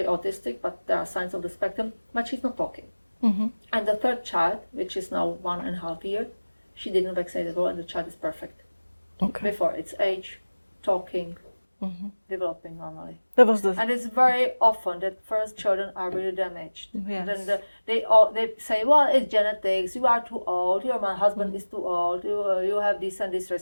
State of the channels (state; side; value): inverted; both; correlation -1.00